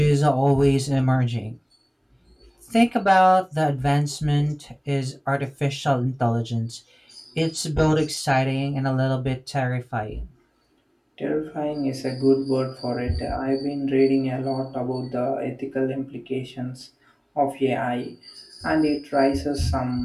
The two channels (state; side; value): identical; both; correlation 1.00